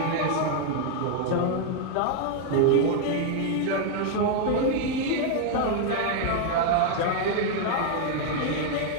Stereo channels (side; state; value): both; different; correlation 0.00